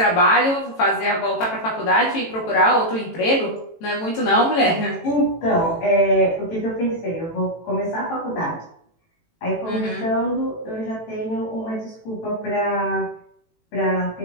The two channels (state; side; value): late; right; 18 ms